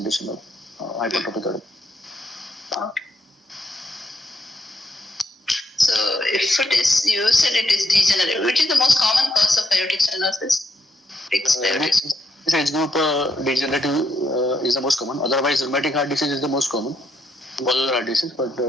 of hypertrophic cardiomyopathy. Okay. So if it is, you said it is degenerative. Which is the most common cause of aortic stenosis? Fixed aortic. This age group degenerative is the most common. Otherwise, rheumatic heart disease is the most common. Valvular heart disease, but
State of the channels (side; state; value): both; normal; correlation 0.76